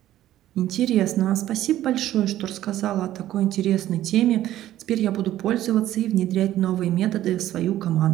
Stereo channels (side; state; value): left; quieter; 13.4 dB